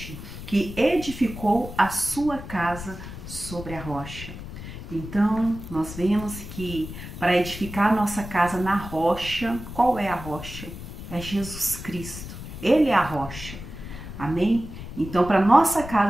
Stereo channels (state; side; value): noise; left; rumble, 11 dB below the sound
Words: que edificou a sua casa sobre a rocha. Então, nós vemos que para edificar a nossa casa na rocha, qual é a rocha? É Jesus Cristo. Ele é a rocha. Amém? Então, para nossa